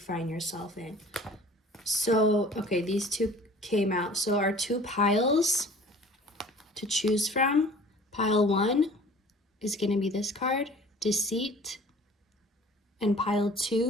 yourself in. So, okay, these two came out. So our two piles to choose from, pile 1 is going to be this card, Deceit, and pile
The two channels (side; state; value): both; normal; correlation 0.47